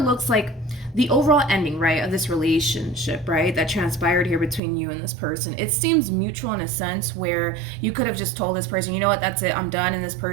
looks like the overall ending, right, of this relationship, right, that transpired here between you and this person, it seems mutual in a sense where you could have just told this person, you know what, that's it, I'm done, and this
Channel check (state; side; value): drops out; left; at 4.6 s